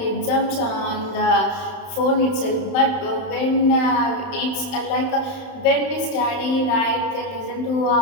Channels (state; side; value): late; right; 31 ms